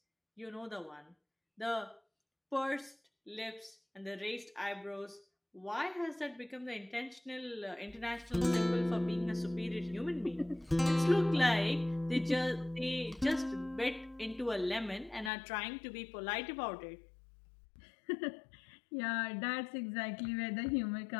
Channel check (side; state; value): right; drops out; at 15.3 s